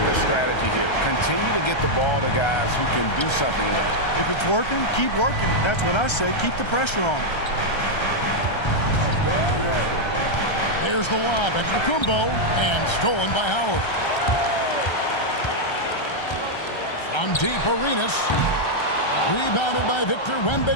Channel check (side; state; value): right; late; 1.3 ms